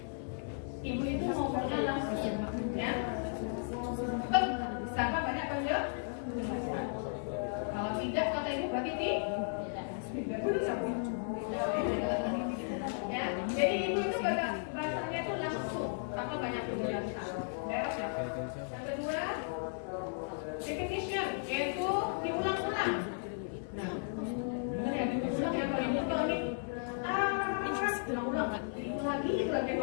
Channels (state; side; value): silent; right; digital silence